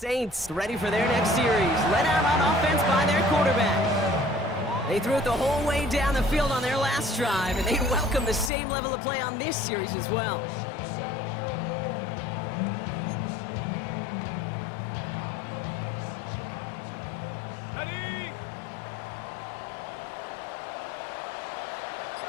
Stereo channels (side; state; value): right; drops out; at 8.5 s